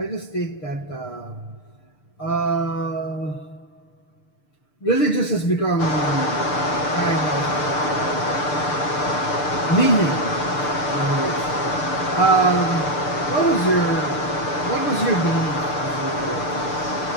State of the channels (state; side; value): late; right; 6.7 ms